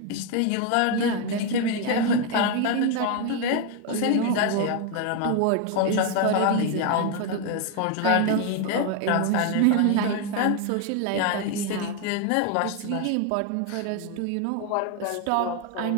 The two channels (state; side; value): different; both; correlation 0.01